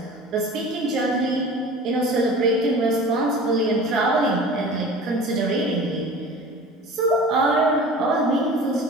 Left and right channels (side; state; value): both; normal; correlation 0.40